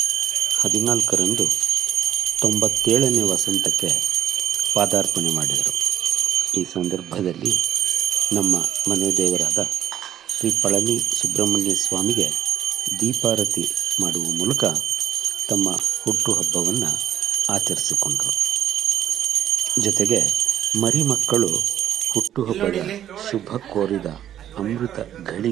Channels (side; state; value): left; quieter; 10.9 dB